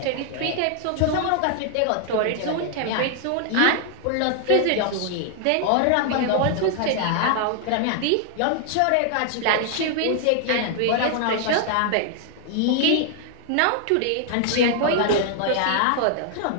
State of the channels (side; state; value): both; different; correlation 0.00